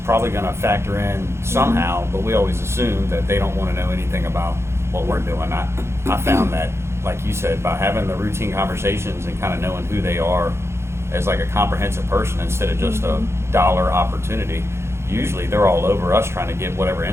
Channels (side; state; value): left; late; 0.13 ms